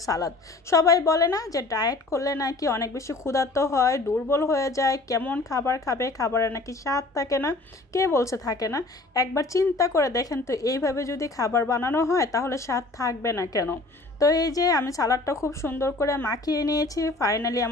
সালাদ। সবাই বলে না যে ডায়েট করলে নাকি নাকি অনেক বেশি ক্ষুধার্ত হয়, দুর্বল হয়ে যায়, কেমন খাবার খাবে, খাবারে নাকি স্বাদ থাকে না। কে বলছে থাকে না? একবার চিন্তা করে দেখেন তো, এইভাবে যদি খাবার বানানো হয় তাহলে স্বাদ থাকবে না কেন? তো এই যে আমি সালাদটা খুব সুন্দর করে মাখিয়ে নিয়েছি, ফাইনালি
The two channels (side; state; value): right; quieter; 3.1 dB